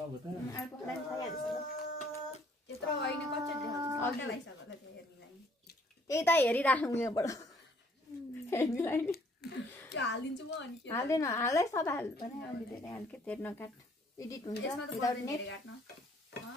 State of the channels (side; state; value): both; normal; correlation 0.62